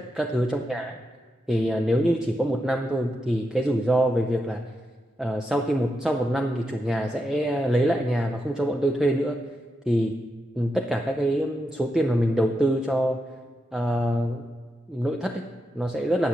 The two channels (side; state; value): both; normal; correlation 0.86